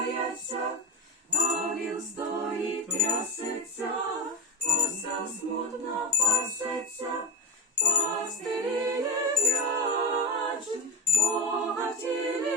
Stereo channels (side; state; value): both; normal; correlation 0.18